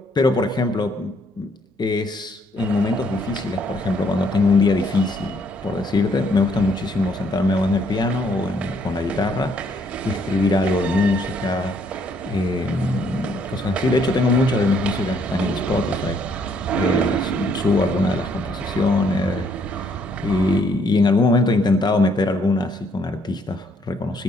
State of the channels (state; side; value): normal; both; correlation 0.68